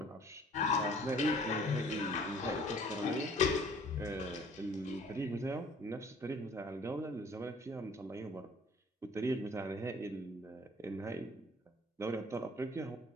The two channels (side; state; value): both; normal; correlation 0.53